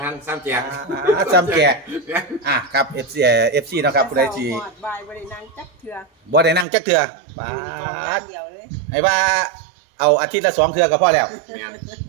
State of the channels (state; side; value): drops out; left; at 6.7 s